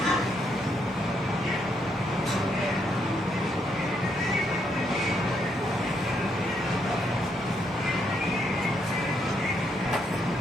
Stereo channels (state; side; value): normal; both; correlation 0.76